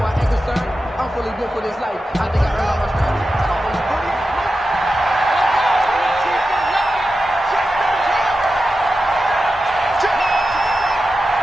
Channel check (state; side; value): normal; both; correlation 0.92